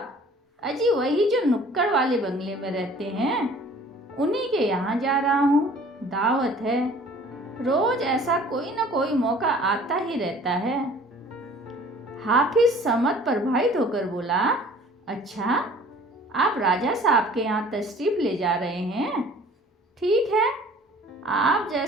अजी वही जो नुक्कड़ वाले बंगले में रहते हैं, उन्हीं के यहाँ जा रहा हूँ। दावत है। रोज ऐसा कोई न कोई मौका आता ही रहता है। हाफिज समझ प्रभावित होकर बोला, अच्छा आप राजा साहब के यहाँ तशरीफ ले जा रहे हैं? ठीक है, आप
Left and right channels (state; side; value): normal; both; correlation 0.51